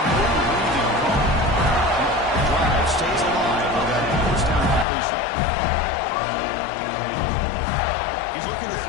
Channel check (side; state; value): right; drops out; at 4.9 s